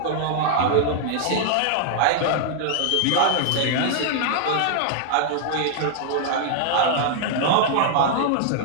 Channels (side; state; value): both; different; correlation -0.01